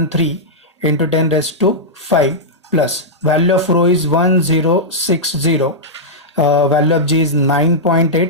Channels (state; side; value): normal; both; correlation -0.09